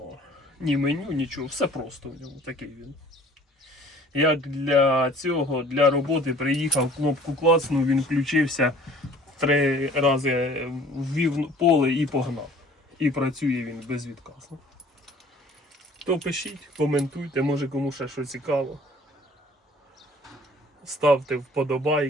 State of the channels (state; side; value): normal; both; correlation 0.51